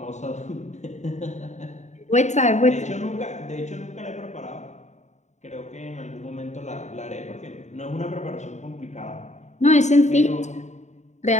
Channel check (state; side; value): late; right; 0.34 ms